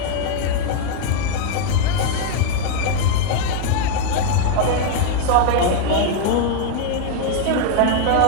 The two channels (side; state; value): both; different; correlation 0.00